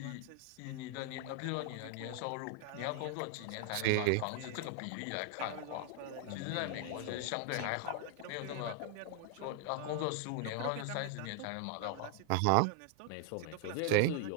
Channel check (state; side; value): different; both; correlation 0.00